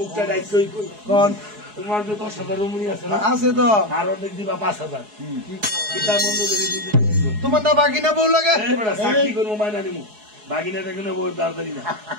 দায়িত্বই কই। কোন তোমার যে 10,000 রুমুনি আছে না, আছে তো, আর অর্ধেক দিবা 5,000। কিতা বন্ধু যদি তোমার না বাকি না বউ লাগে? সাক্ষী করবো মায়না নিমু, বাগিনাটা কোনো বউ তাড়াতাড়ি না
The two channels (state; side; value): late; left; 4.7 ms